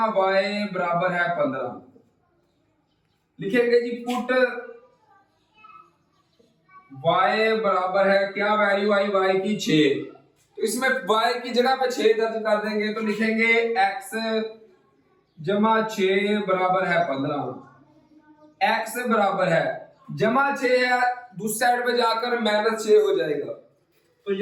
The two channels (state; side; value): identical; both; correlation 1.00